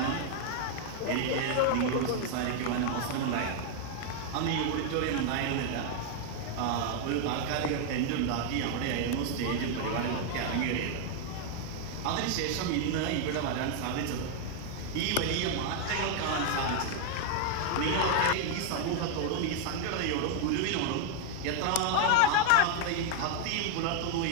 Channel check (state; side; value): different; both; correlation 0.00